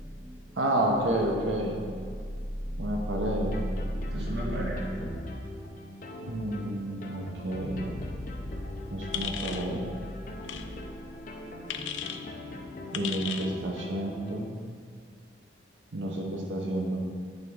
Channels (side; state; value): both; normal; correlation 0.51